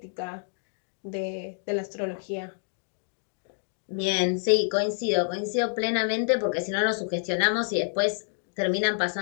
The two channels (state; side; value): silent; right; digital silence